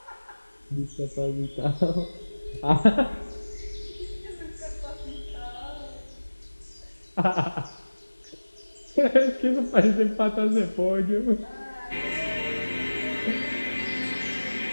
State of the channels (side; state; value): both; inverted; correlation -1.00